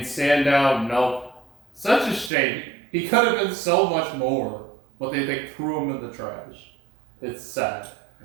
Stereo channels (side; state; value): left; drops out; at 2.3 s